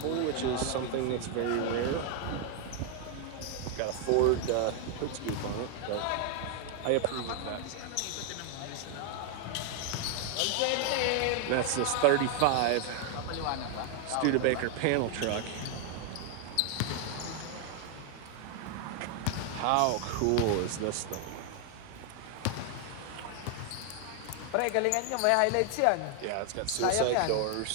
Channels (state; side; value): different; both; correlation 0.00